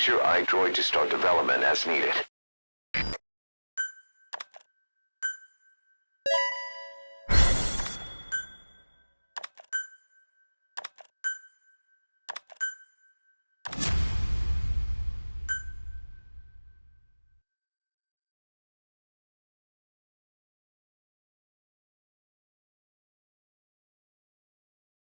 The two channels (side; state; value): both; inverted; correlation -1.00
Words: your iDroid to start development as needed.